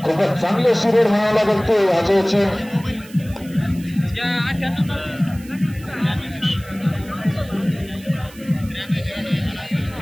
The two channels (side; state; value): right; noise; hiss, 21 dB below the sound